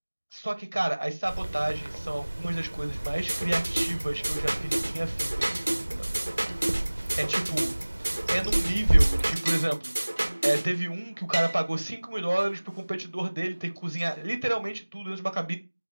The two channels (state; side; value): inverted; both; correlation -1.00